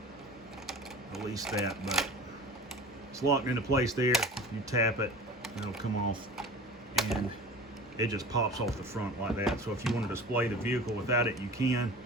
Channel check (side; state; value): both; normal; correlation 0.38